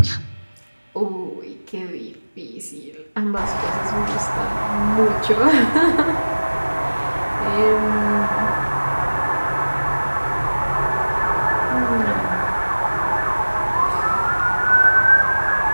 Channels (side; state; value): both; inverted; correlation -1.00